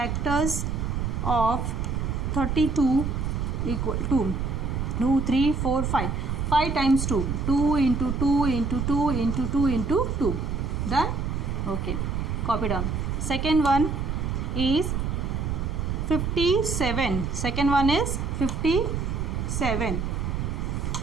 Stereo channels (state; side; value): noise; right; rumble, 1 dB below the sound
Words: of 32 equal to 2, 3, 4, 5. 5 times 2. 2 into 2 into 2 into 2 into 2. Done? Okay. Copy down. Second one is 57. Second one is 57.